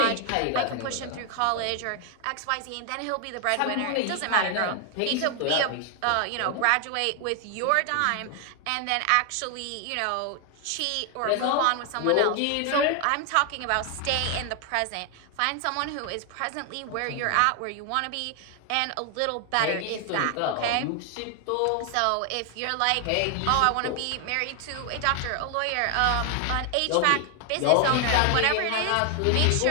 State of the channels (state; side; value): different; both; correlation 0.00